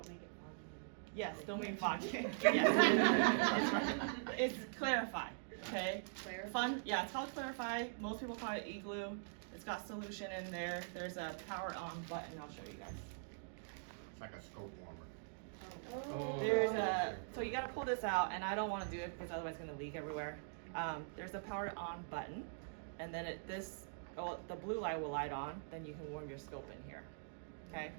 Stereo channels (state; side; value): silent; left; digital silence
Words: make it foggy. Yes, don't mean foggy. Yes. It's Clarify, okay? Clarify? Yeah, it's called Clarify. Most people call it igloo. It's got solution in there. There's a power on button. I'll show you guys. It's like a scope warmer. Oh. There's so you gotta pull this out, and I don't wanna do it because otherwise it's gonna leak everywhere. There's a power on button, and then the blue light will light on, then you can warm your scope in here, okay?